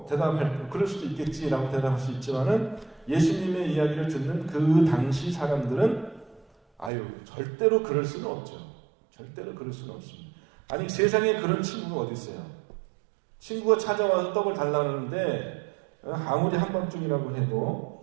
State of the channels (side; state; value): left; drops out; at 6.9 s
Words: 그럴 수도 있겠지라고 대답할 수 있지만은 예수님의 이야기를 듣는 그 당시 사람들은 절대로 그럴 수는 없죠. 절대로 그럴 수는 없습니다. 아니 세상에 그런 친구가 어디 있어요? 친구가 찾아와서 떡을 달라는데 아무리 한밤중이라고